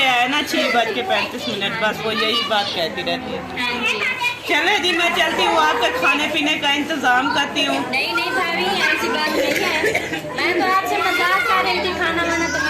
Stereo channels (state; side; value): identical; both; correlation 1.00